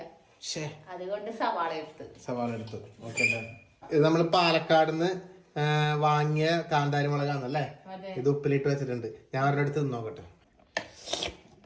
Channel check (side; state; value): both; identical; correlation 1.00